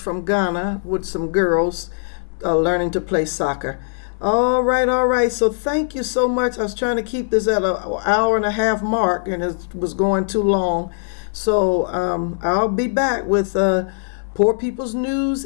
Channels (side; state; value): right; silent; digital silence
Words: Ghana with some girls learning to play soccer. All right. So thank you so much. I was trying to keep this at an 1.5 hour mark, and it was going too long. So I'll be back with Poor People's News